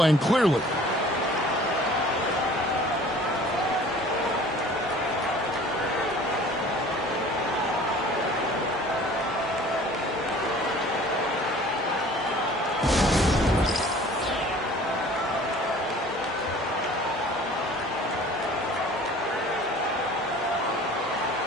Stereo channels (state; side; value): normal; both; correlation 0.48